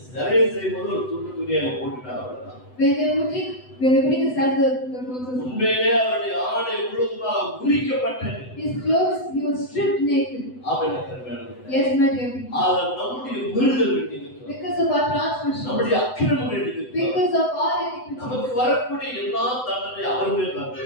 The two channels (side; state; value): right; late; 7.9 ms